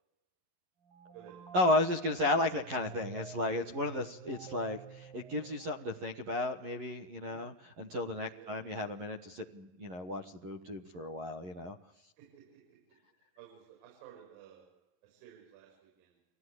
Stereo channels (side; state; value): left; late; 11 ms